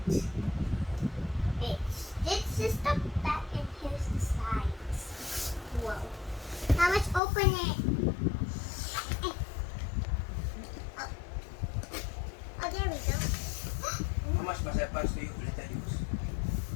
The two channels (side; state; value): right; drops out; at 7.2 s